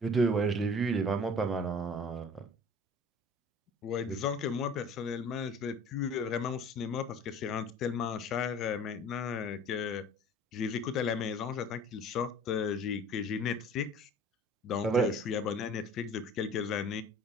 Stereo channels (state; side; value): normal; both; correlation 0.46